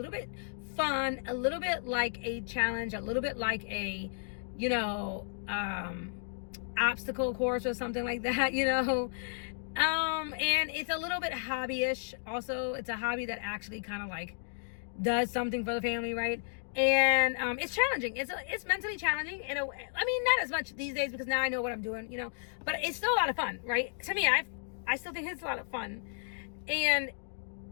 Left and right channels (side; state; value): right; silent; digital silence